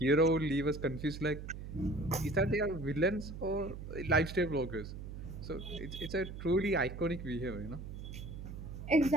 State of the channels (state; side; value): noise; right; hum, 9 dB below the sound